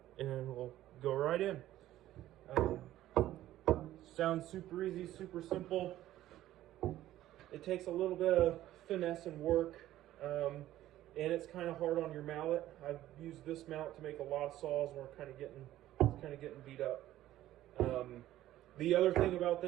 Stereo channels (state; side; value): quieter; left; 13.9 dB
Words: and we'll go right in. Sounds super easy, super simple. It takes a little bit of finesse and work, and it's kind of hard on your mallet. I've used this mallet to make a lot of saws, and we're kind of getting beat up. The other thing about